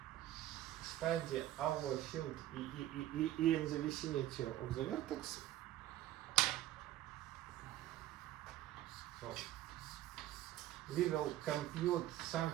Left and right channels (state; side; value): quieter; left; 14.0 dB